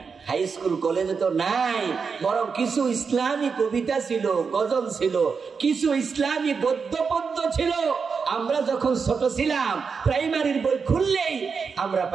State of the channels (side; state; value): left; quieter; 5.5 dB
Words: হাই স্কুল কলেজে তো নাই, বরং কিছু ইসলামী কবিতা ছিল, গজল ছিল, কিছু ইসলামী গদ্য পদ্য ছিল। আমরা যখন ছোট ছিলাম, প্রাইমারির বই খুললেই আমরা